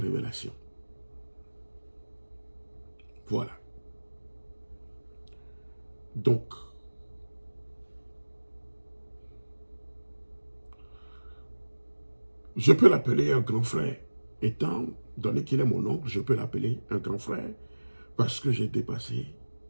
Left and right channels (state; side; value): inverted; both; correlation -1.00